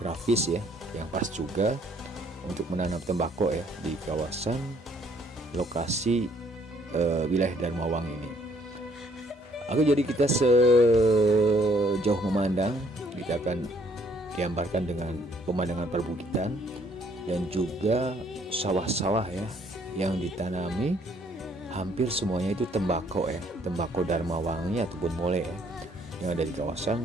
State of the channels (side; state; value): both; normal; correlation 0.64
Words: ya yang pas juga untuk menanam tembakau ya di kawasan lokasi wilayah Dharmawangi ini. Jadi kita sejauh memandang, kita akan digambarkan dengan pemandangan perbukitan dan juga sawah-sawah ya yang ditanami, hampir semuanya itu tembakau ya, tembakau Dharmawangi ataupun Molai ya, yang ada di